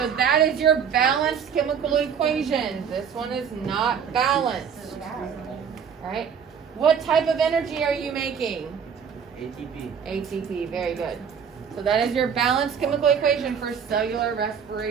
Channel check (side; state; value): left; quieter; 7.2 dB